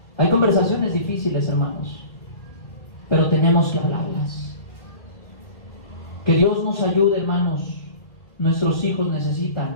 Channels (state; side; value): late; right; 1.7 ms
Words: Hay conversaciones difíciles, hermanos, pero tenemos que hablarlas. Que Dios nos ayude, hermanos. Nuestros hijos